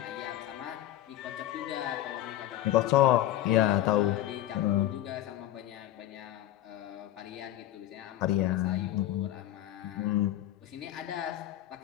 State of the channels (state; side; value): quieter; right; 13.5 dB